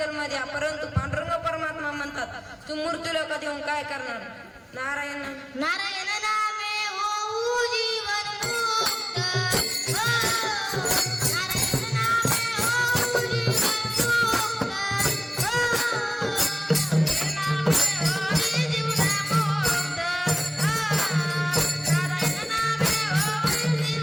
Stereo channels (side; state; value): both; identical; correlation 1.00